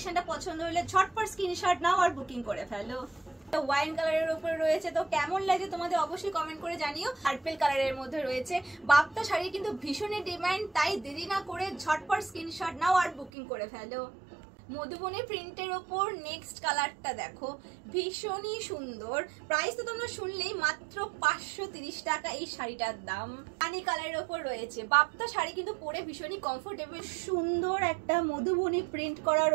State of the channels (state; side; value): drops out; left; at 13.3 s